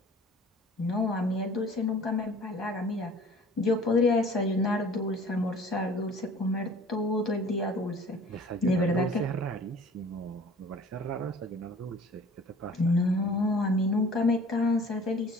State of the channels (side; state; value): both; normal; correlation 0.48